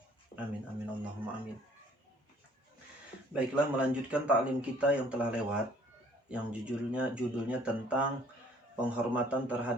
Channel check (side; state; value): both; normal; correlation 0.58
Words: Amin amin Allahumma amin. Baiklah, melanjutkan ta'lim kita yang telah lewat, yang judulnya tentang penghormatan